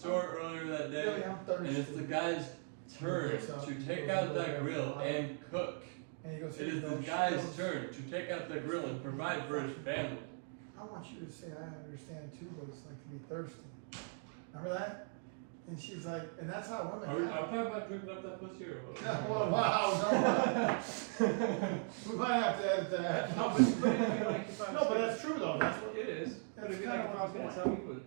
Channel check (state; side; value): silent; left; 52 dB below the other